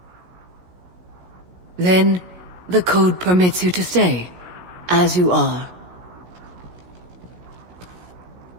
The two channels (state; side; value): late; left; 17 ms